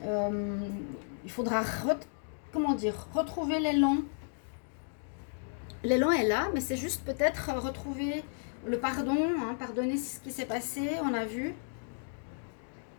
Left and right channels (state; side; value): silent; right; digital silence